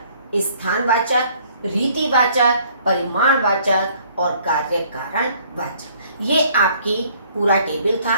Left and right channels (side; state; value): both; inverted; correlation -0.60